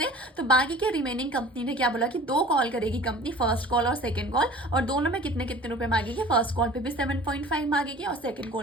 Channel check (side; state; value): both; normal; correlation 0.44